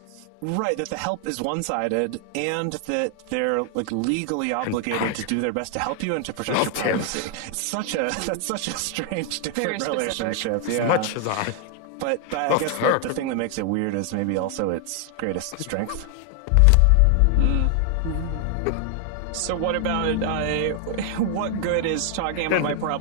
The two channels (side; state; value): both; different; correlation 0.00